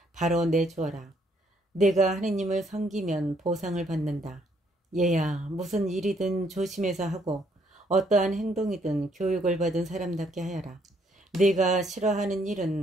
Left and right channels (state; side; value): normal; both; correlation 0.69